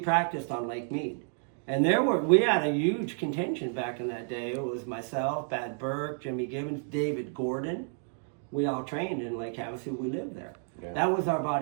on Lake Mead. And we had a huge contingent back in that day. It was myself, Bad Burke, Jimmy Gibbons, David Gordon. We all trained in Lake Havasu. We lived there. Yeah. That was our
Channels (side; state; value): left; silent; 57 dB below the other